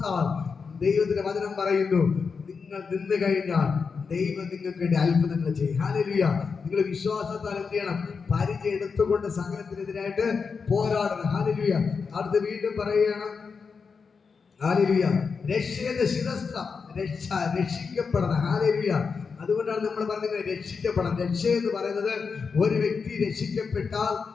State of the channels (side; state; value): right; quieter; 5.3 dB